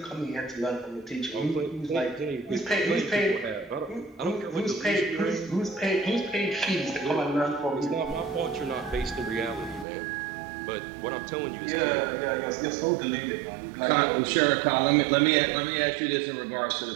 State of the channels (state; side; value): drops out; left; at 9.9 s